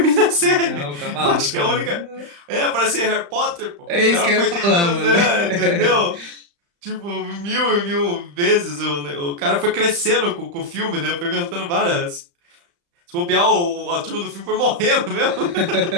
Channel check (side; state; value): left; late; 35 ms